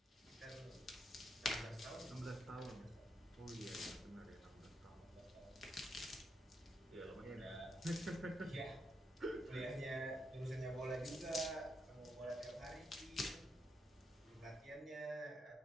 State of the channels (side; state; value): both; normal; correlation 0.80